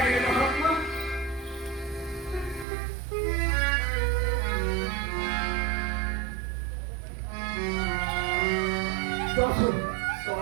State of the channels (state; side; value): drops out; left; at 2.7 s